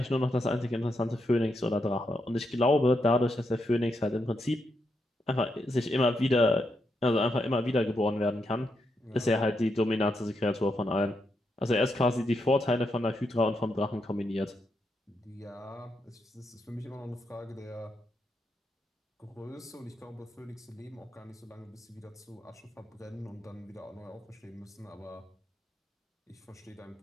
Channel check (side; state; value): both; normal; correlation 0.82